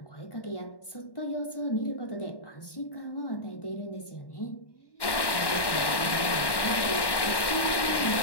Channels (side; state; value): right; late; 1.1 ms